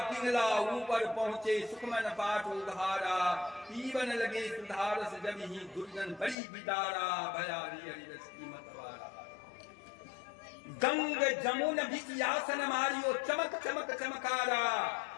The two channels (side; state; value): right; drops out; at 6.4 s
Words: पिंगला ऊपर पहुंचे सुखमन पाठ उधारा, पीवन लगे सुधारस जब ही दुर्जन बड़ी बिदारा, भया जी हरिरस की मतवारा। गंग जमुन बिचियासन मारियो, चमक चमक चमकारा,